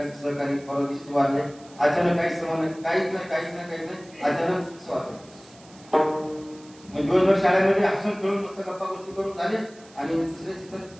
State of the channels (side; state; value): right; noise; hiss, 24 dB below the sound